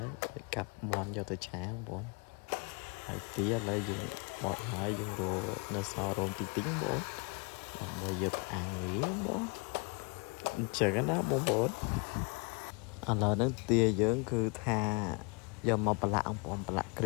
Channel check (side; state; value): right; quieter; 32.1 dB